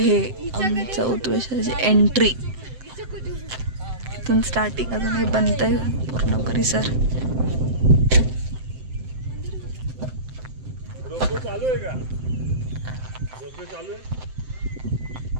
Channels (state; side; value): late; left; 7.8 ms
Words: आमच्या उत्वेश्वराची एंट्री। इथून स्टार्टिंग अजून हे बनतंय पूर्ण परिसर। रोपवे चालू आहे का? रोपवे चालू आहे?